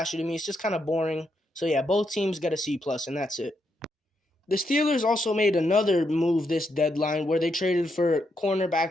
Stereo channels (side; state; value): both; normal; correlation 0.80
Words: to me. It's just kind of boring. So yeah, both teams get a C plus, and that's it. The Steelers also made another move this deadline where they traded for